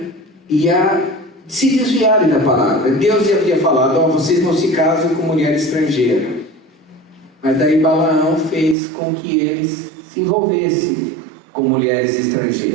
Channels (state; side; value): drops out; left; at 8.8 s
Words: e a se desviarem da palavra. Deus havia falado: vocês não se casam com mulher estrangeira. Mas daí Balaão fez com que eles se envolvessem com mulheres